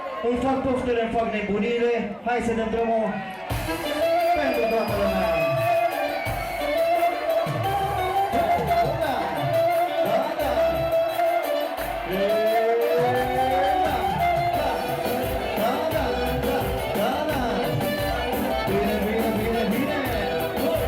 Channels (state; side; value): identical; both; correlation 1.00